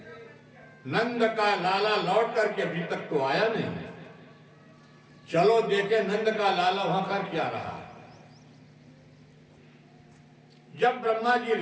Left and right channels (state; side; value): identical; both; correlation 1.00